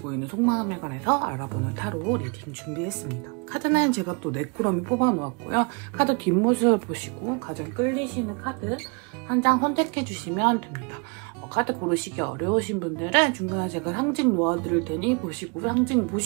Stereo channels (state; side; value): quieter; left; 34.2 dB